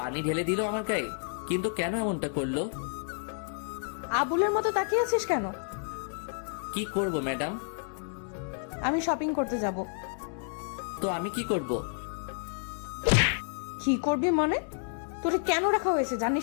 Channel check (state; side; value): silent; right; 58 dB below the other